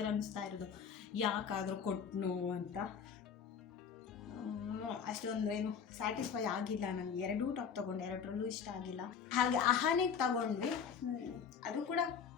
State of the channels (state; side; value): quieter; right; 6.9 dB